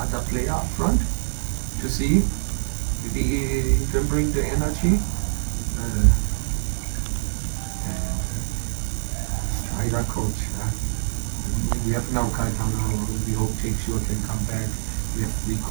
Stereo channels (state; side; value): silent; left; digital silence